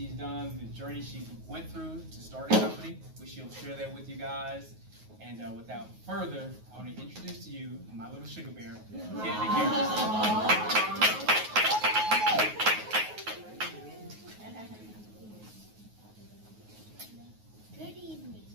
done, the journey she went through to start a company. She'll share that with you guys. And without further, I want to introduce to you my little sugar bear, Kennedy Harris.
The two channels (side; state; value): left; late; 9.4 ms